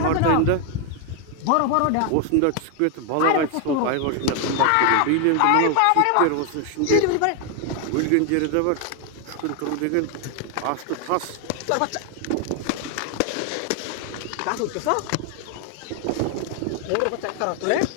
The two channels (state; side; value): different; both; correlation 0.00